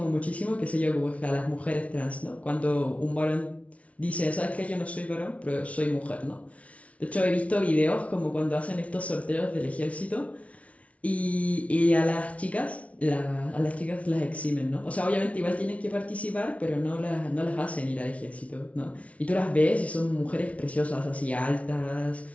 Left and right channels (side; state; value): right; late; 0.065 ms